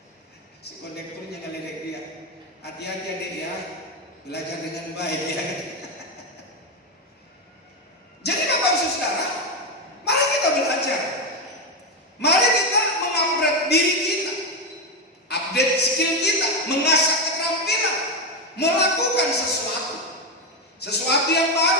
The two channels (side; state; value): both; normal; correlation 0.10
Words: Si kondekturnya ngeledek dia. Hati-hati adik ya, belajar dengan baik ya. Jadi Bapak Ibu Saudara, mari kita belajar. Mari kita mengupgrade diri kita, update skill kita, mengasah keterampilan, melakukan sesuatu yang